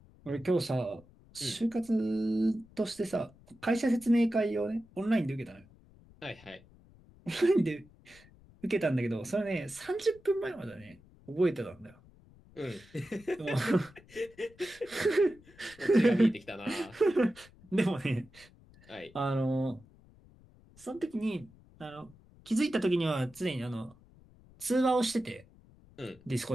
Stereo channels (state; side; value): noise; left; rumble, 25 dB below the sound